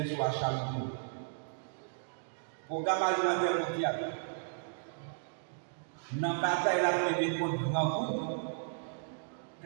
sur la Chaloupe. Programme alimentaire mondial. Dans la bataille la première contre grand groupe,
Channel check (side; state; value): left; silent; digital silence